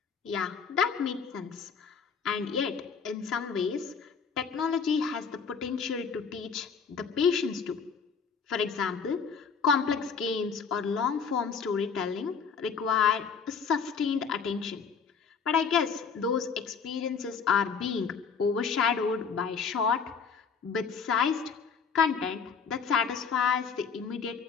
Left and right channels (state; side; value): quieter; right; 6.0 dB